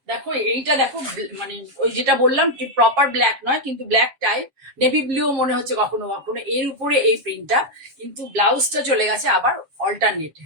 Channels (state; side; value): late; left; 7.4 ms